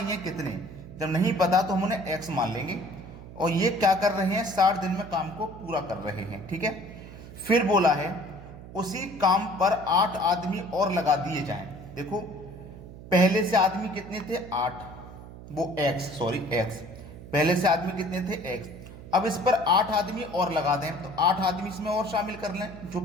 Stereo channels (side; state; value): right; noise; hum, 15 dB below the sound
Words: है कितने। जब नहीं पता तो हम उन्हें एक्स मान लेंगे, और ये क्या कर रहे हैं? 60 दिन में काम को पूरा कर रहे हैं। ठीक है, फिर बोला है उसी काम पर 8 आदमी और लगा दिए जाएं। देखो, पहले से आदमी कितने थे? 8। वो एक्स, पहले से आदमी कितने थे? एक्स। अब इस पर 8 आदमी और लगा दें, तो 8 आदमी इसमें और शामिल कर लें। जो